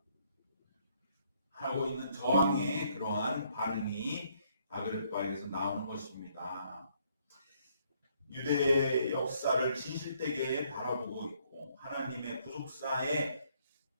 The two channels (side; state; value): both; inverted; correlation -0.68